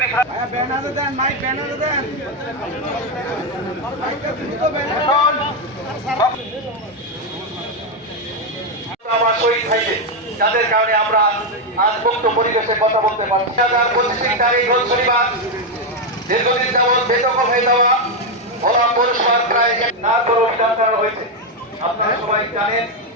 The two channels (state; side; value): normal; both; correlation 0.04